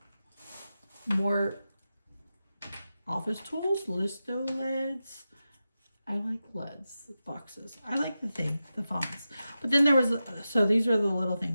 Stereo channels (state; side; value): inverted; both; correlation -0.92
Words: office tools, listo leads. I like leads, boxes. I like the fonts. But then there was, so these are the little